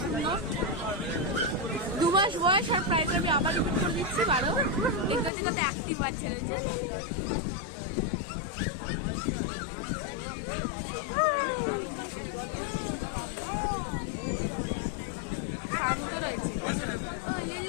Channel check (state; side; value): drops out; right; at 5.3 s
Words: সুন্দর। 2 মাস বয়স আর প্রাইস আমি আবার রিপিট করে দিচ্ছি 12। দেখতে হচ্ছে কত অ্যাক্টিভ বাচ্চা রয়েছে। শান্ত রয়েছে।